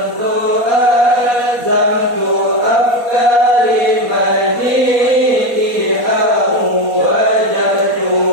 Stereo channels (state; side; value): late; left; 4.2 ms